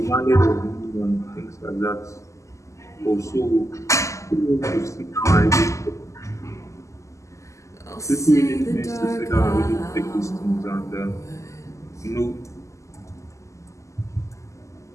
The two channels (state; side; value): late; right; 0.15 ms